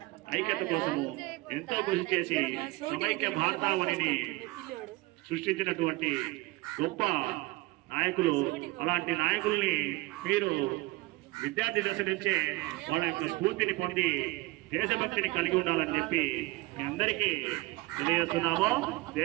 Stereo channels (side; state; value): left; quieter; 20.8 dB